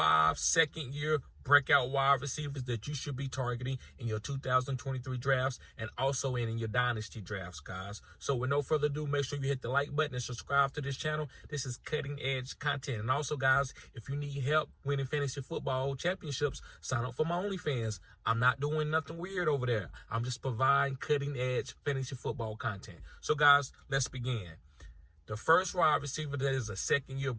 second-year breakout wide receivers that you should be targeting in your 2023 drafts and also in your dynasty drafts, guys. So with no further ado, make sure you hit the like button and subscribe to this channel. This is cutting edge content. And also, guys, if you need help winning fantasy football championships, sign up for my OnlyFans. I'm not doing nothing weird over there. I'm just providing cutting edge fantasy football content. So, guys, let's begin. The first wide receiver that is a second-year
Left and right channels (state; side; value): identical; both; correlation 1.00